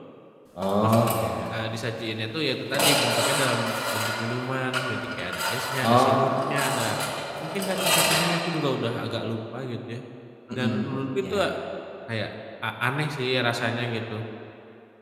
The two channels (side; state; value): both; identical; correlation 1.00